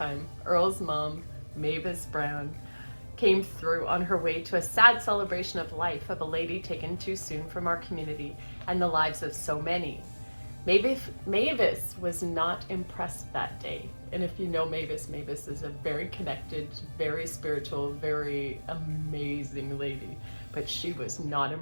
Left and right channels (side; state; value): both; inverted; correlation -1.00